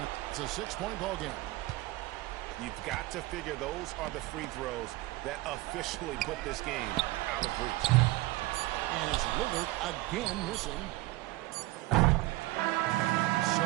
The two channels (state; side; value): quieter; left; 19.1 dB